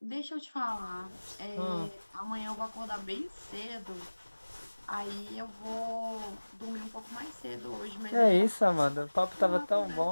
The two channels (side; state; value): both; inverted; correlation -1.00